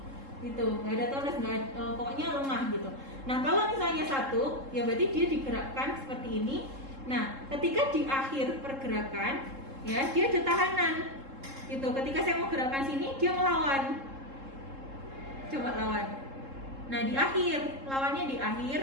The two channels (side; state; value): left; late; 3.7 ms